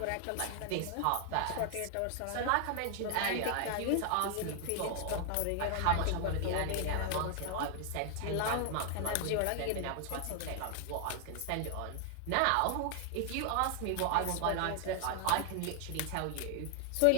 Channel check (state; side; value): different; both; correlation 0.00